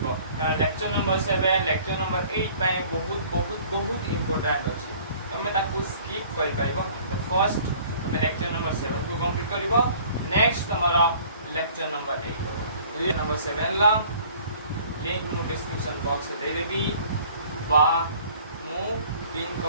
लेक्चर नंबर 7 लेक्चर नंबर 8 पाए बहुत बहुत बहुत इंपोर्टेंट अछि तमे ताकू स्किप कर पाइबो तो फर्स्ट तमे लेक्चर नंबर 7 को कंप्लीट करिवो नेक्स्ट हमारा लेक्चर नंबर 8 हो नंबर 7 ला लिंक मु डिस्क्रिप्शन बॉक्स दे देबी बा मु पिन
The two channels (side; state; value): both; inverted; correlation -0.52